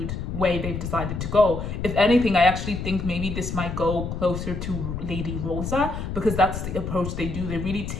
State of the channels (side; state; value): left; noise; rumble, 5 dB below the sound